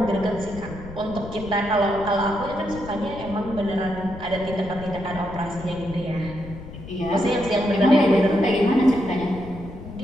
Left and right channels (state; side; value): noise; left; rumble, 13 dB below the sound